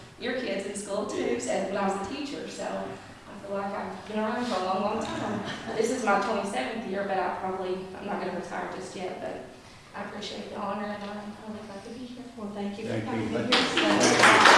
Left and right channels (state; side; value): identical; both; correlation 1.00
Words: your kids in school too, so when I was a teacher. So I feel like I've been around for a long, long time. This is my 27th year, but I'm not going to retire just yet, but I appreciate the honor, and I'm really glad to be here. Well, thank you for Thank coming. you.